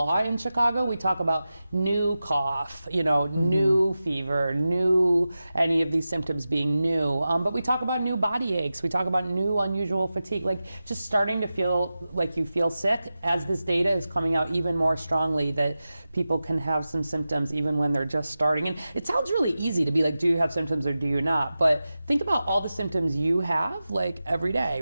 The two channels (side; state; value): both; inverted; correlation -0.94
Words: in Chicago, we talk about new cough, new fever, new, any of these symptoms being new. But we talk about new body aches. We talk about new unusual fatigue, like just starting to feel like you feel sick as this data is coming out even more strongly that people can have some symptoms even when they're just starting. And it sounds really easy to be like, do you have symptoms or do you not? But think about all the symptoms you have like every day,